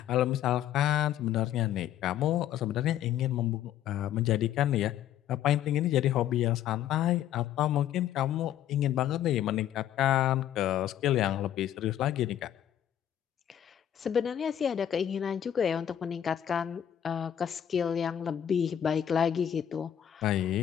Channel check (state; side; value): quieter; right; 10.7 dB